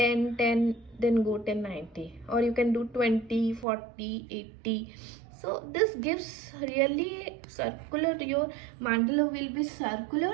10, then go 10 90, or you can do 20 40 80. So this gives really circular, your mandala will be circular,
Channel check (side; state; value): left; drops out; at 3.7 s